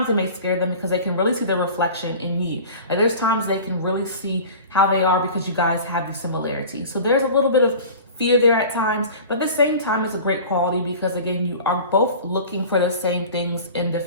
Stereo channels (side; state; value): both; inverted; correlation -0.39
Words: it may scare them because they can really see the reflection in you. Like there's times they can really see how they are because you guys have these similarities. So there's a little bit of fear there at times, but at the same time, it's a great quality, because again, you are both looking for the same things in the